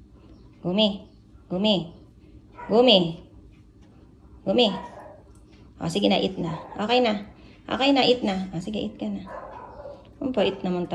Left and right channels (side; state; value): both; identical; correlation 1.00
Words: Gumi. Gumi. Gumi. Gumi. O, sige na, eat na. Okay na. Okay na, eat na. O, sige, eat ka na. Ang bait naman